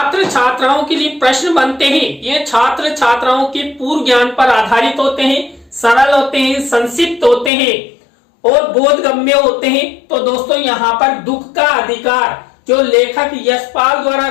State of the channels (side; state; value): right; drops out; at 7.5 s